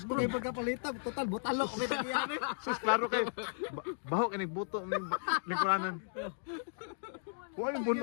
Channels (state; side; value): silent; right; digital silence